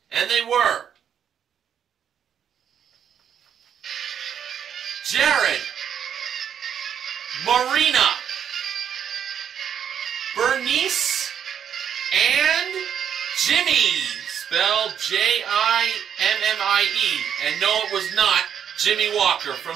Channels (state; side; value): quieter; left; 8.6 dB